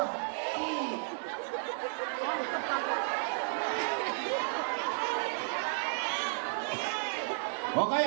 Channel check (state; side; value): silent; left; digital silence